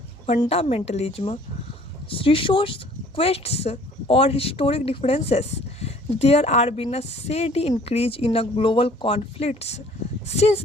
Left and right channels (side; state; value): both; normal; correlation 0.54